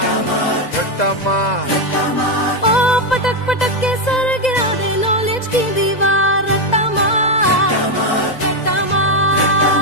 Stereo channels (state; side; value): late; right; 2.0 ms